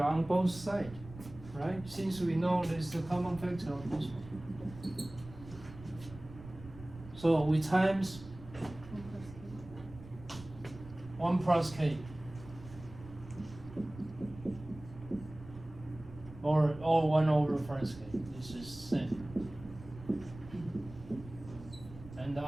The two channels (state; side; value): noise; right; rumble, 16 dB below the sound